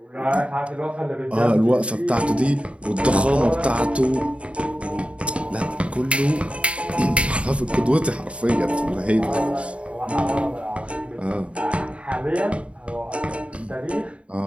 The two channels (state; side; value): late; left; 0.062 ms